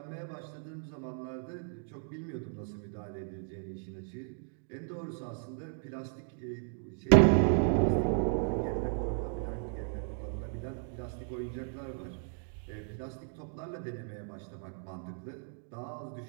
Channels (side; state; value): left; silent; 54 dB below the other